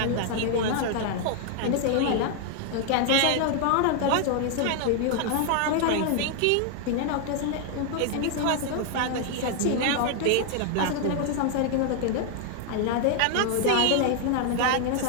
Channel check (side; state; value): both; different; correlation 0.00